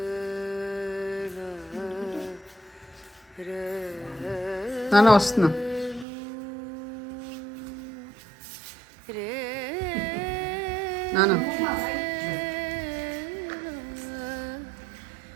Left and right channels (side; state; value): left; drops out; at 6.1 s